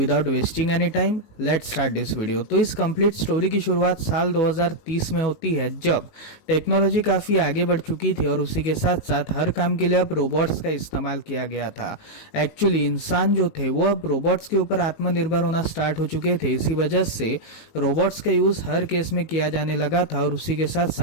wasting any time let's start this video. तो इस कंप्लीट स्टोरी की शुरुआत साल 2030 में होती है, जब टेक्नोलॉजी काफ़ी आगे बढ़ चुकी थी और उसी के साथ साथ हर काम के लिए अब रोबोट्स का इस्तेमाल किया गया था। एक्चुअली इंसान जो थे वो अब रोबोट्स के ऊपर आत्मनिर्भर होना स्टार्ट हो चुके थे। इसी वजह से रोबोट्स का यूज़ हर केस में किया जाने लगा था, और उसी के साथ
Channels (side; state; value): right; late; 19 ms